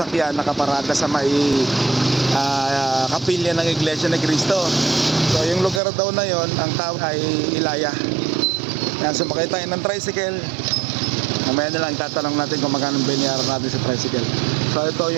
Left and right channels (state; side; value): drops out; left; at 5.8 s